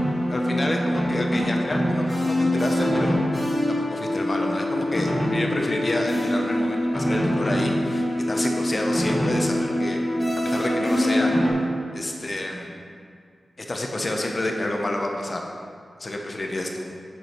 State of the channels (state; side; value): normal; both; correlation 0.94